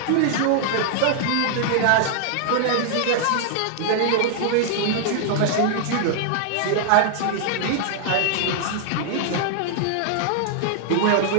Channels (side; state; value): both; different; correlation 0.00